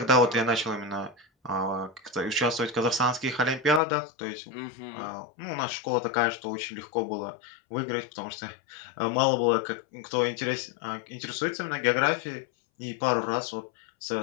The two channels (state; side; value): drops out; right; at 3.8 s